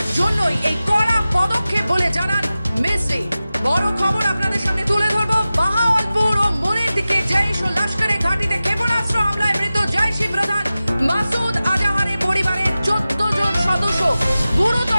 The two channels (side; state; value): both; inverted; correlation -0.95